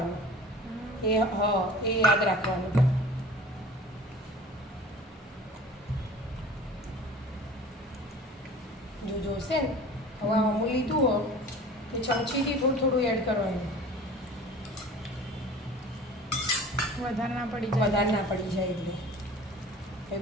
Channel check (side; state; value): both; normal; correlation 0.42